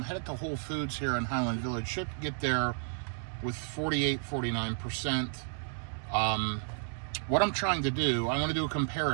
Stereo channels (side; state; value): left; silent; digital silence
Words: headed to Whole Foods here in Highland Village. Should get there with 48, 49%. What I'm trying to do, I want to do a